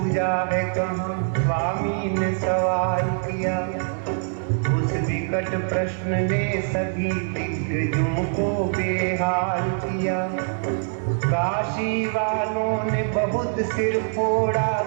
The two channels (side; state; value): left; silent; digital silence